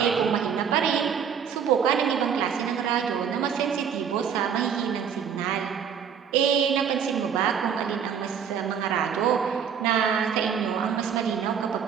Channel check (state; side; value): quieter; left; 7.6 dB